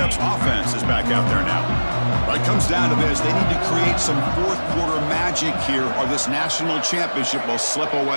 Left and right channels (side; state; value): both; inverted; correlation -1.00